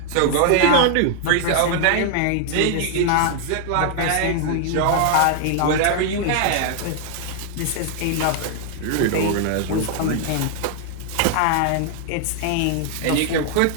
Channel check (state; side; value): different; both; correlation 0.00